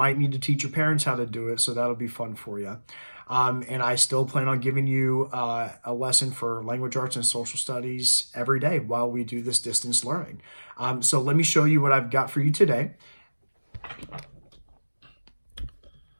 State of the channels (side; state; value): both; inverted; correlation -1.00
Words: need to teach your parents how to do it, so that'll be fun for you. And I still plan on giving you a lesson for language arts and social studies every day while we do this distance learning. So let me show you what I've got for you today.